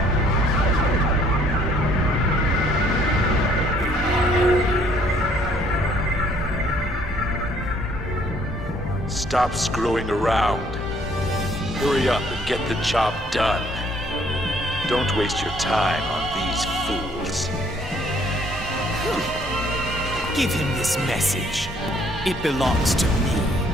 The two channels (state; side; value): normal; both; correlation 0.63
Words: Stop screwing around. Hurry up and get the job done. Don't waste your time on these fools. Give him this message. It belongs to me.